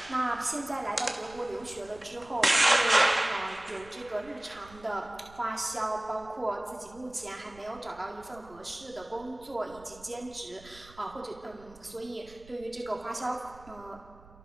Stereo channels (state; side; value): noise; right; rumble, 21 dB below the sound